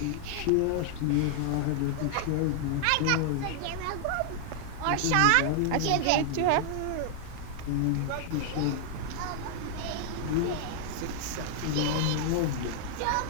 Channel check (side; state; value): both; different; correlation 0.00